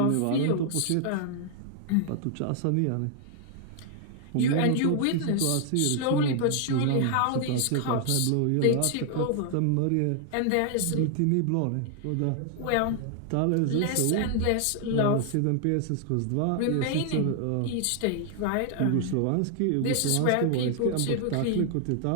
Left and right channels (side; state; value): both; different; correlation 0.00